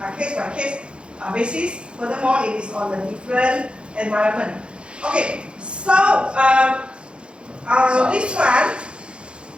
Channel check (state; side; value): late; left; 0.056 ms